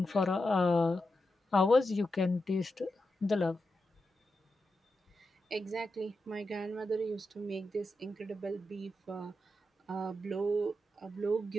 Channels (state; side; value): normal; both; correlation 0.88